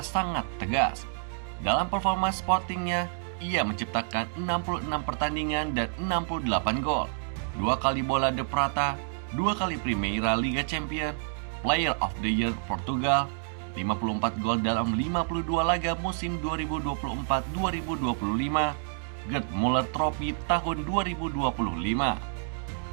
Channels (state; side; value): silent; left; digital silence